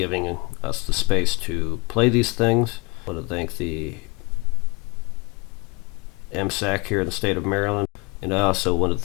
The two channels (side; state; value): right; quieter; 27.7 dB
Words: us the space to play these things. I want to thank the MSAC here in the state of Maryland. And I also want to